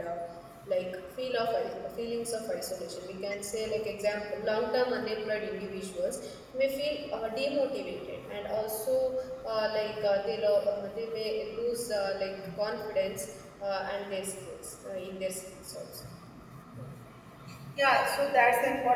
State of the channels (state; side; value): identical; both; correlation 1.00